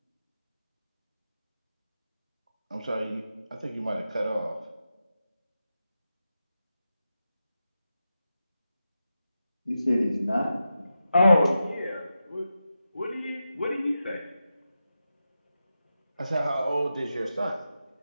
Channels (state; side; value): inverted; both; correlation -0.90